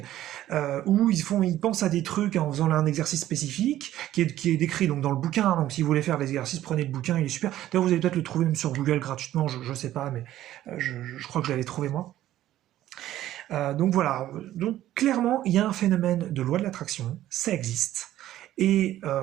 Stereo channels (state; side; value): quieter; left; 13.5 dB